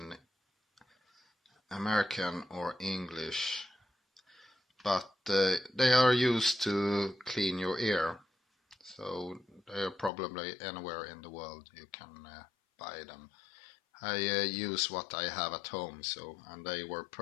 American or English, but they are used to clean your ear, so they are probably anywhere in the world you can buy them. I use what I have at home, and they were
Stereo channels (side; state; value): right; drops out; at 10.1 s